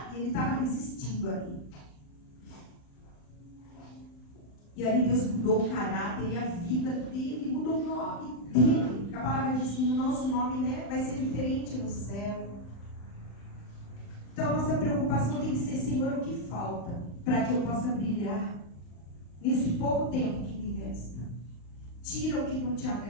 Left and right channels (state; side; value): late; right; 38 ms